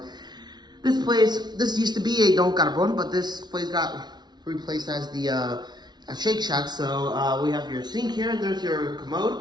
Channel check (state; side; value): late; left; 0.20 ms